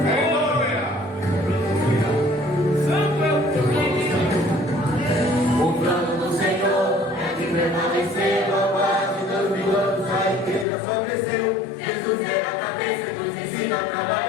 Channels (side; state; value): right; drops out; at 10.7 s